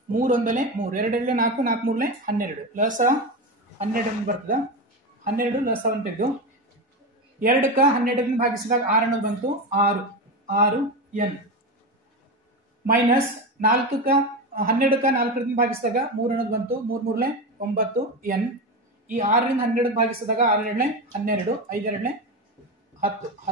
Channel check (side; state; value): both; normal; correlation 0.19